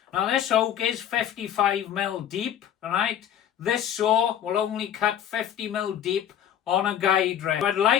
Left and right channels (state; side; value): quieter; right; 10.0 dB